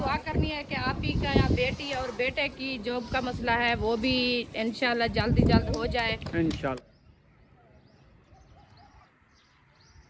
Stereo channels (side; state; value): both; identical; correlation 1.00